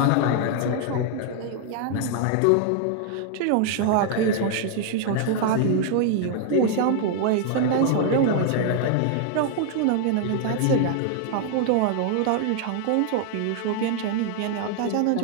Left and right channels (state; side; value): different; both; correlation 0.00